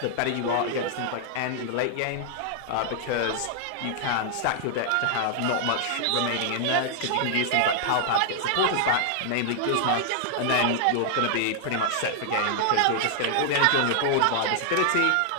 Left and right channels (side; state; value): both; different; correlation 0.00